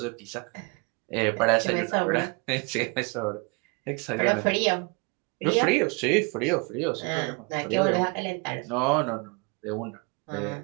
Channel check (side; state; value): left; quieter; 31.2 dB